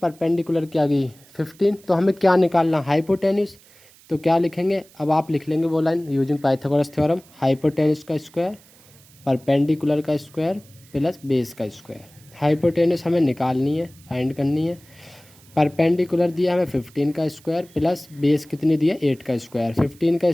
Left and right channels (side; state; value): right; noise; hiss, 26 dB below the sound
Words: की आ गई 15, तो हमें क्या निकालना, हाइपोटेन्यूस। तो क्या लिखेंगे, अब आप लिख लेंगे वो line using Pythagoras theorem, hypotenuse का स्क्वायर परपेंडिकुलर का स्क्वायर प्लस बेस का स्क्वायर। हाइपोटेन्यूस हमें निकालनी है, फाइंड करनी है। परपेंडिकुलर दिया हमें 15 का स्क्वायर प्लस बेस कितनी दिया, 8 का स्क्वायर। 15 का